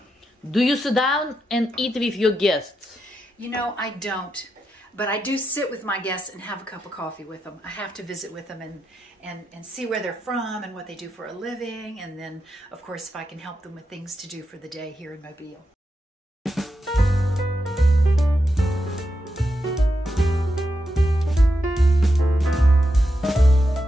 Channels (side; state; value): both; normal; correlation 0.85